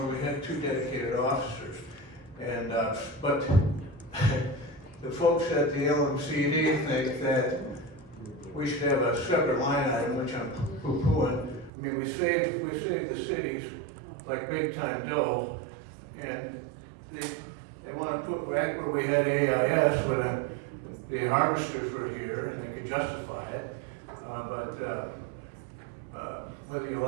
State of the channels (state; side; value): drops out; left; at 11.7 s